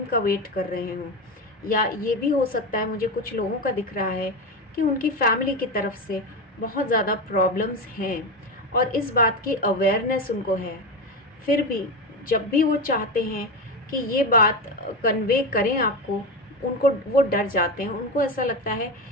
का वेट कर रहे हों, या ये भी हो सकता है, मुझे कुछ लोगों का दिख रहा है कि उनकी फैमिली की तरफ से बहुत ज़्यादा प्रॉब्लम्स हैं और इस बात की अवेयरनेस उनको है। फिर भी जब भी वो चाहते हैं कि ये बात कन्वे करें आपको, उनको वो डर जाते हैं, उनको ऐसा लगता है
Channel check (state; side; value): normal; both; correlation 0.17